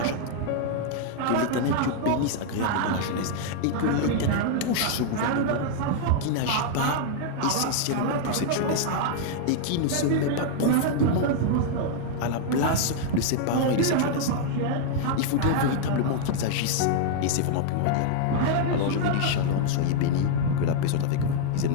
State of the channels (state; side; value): different; both; correlation 0.00